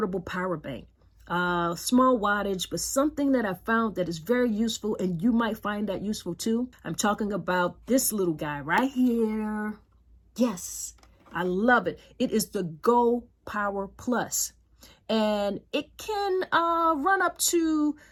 power bank. Small wattage, but something that I found that is very useful, and you might find that useful too. I'm talking about this little guy right here. Yes, I love it. It is the GoPower Plus, and it can run up to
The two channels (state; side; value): identical; both; correlation 1.00